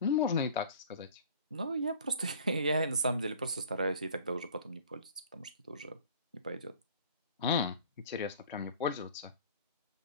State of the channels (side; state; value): both; inverted; correlation -0.46